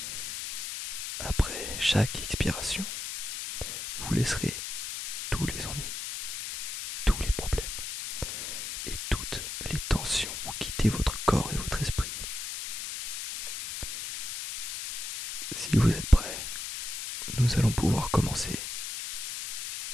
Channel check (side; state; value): left; noise; hiss, 5 dB below the sound